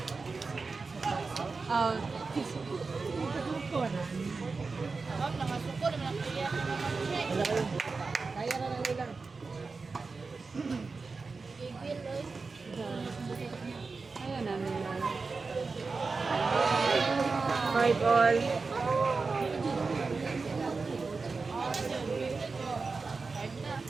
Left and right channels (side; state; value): left; quieter; 4.3 dB